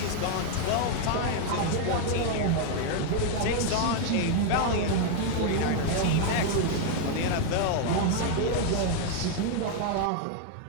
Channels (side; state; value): both; different; correlation 0.00